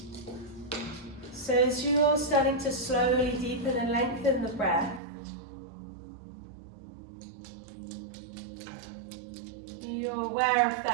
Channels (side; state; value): left; drops out; at 5.0 s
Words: So as you're starting to slowly deepen and lengthen the breath, you're aware of